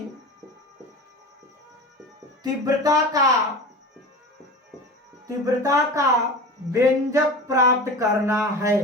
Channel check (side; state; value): both; normal; correlation 0.32